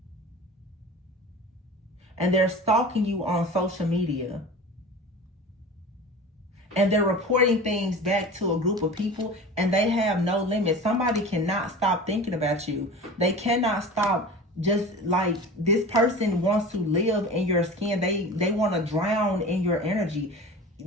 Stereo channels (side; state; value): both; normal; correlation 0.35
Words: And they're stalking you on social media. And they're reporting things back to a group of people, and they have no limit. Somebody cannot stop thinking about you. They cannot stop. Just like this person wants to live in your skin. They want to drown in your energy.